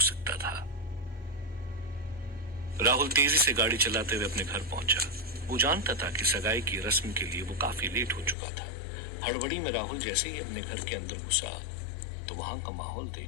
सकता था। राहुल तेजी से गाड़ी चलाते हुए अपने घर पहुंचा। वो जानता था कि सगाई की रस्म के लिए वो काफी लेट हो चुका था। हड़बड़ी में राहुल जैसे ही अपने घर के अंदर घुसा तो वहां का माहौल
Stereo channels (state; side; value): drops out; right; at 8.3 s